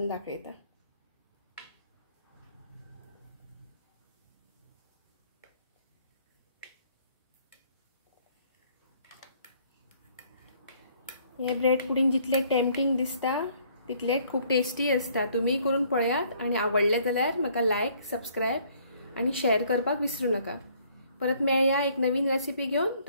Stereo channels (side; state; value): both; inverted; correlation -0.62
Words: दाखयता। हे ब्रेड पुडिंग जितले टेम्पटिंग दिसता तितले खूप टेस्टी असता। तुम्ही करून पळयात आणि आवडले जाल्यार म्हाका लाईक, सबस्क्राइब आणि शेअर करपाक विसरू नका। परत मेळया एक नवीन रेसिपी घेऊन।